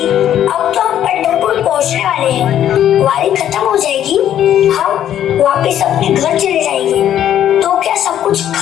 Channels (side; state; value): right; quieter; 10.8 dB